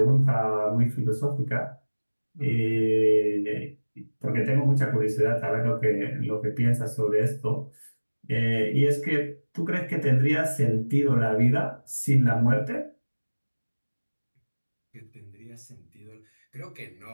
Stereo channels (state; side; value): inverted; both; correlation -1.00